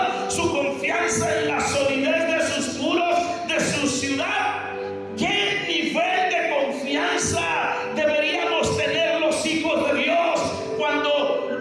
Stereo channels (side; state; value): both; identical; correlation 1.00